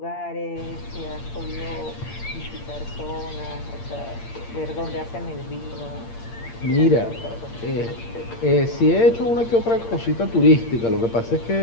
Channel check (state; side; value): late; right; 8.7 ms